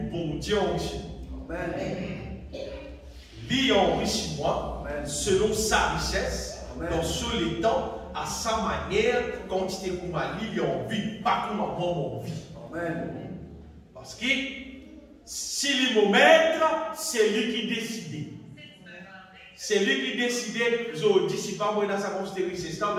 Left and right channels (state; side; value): identical; both; correlation 1.00